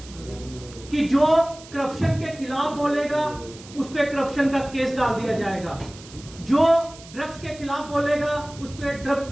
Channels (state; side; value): noise; right; hiss, 19 dB below the sound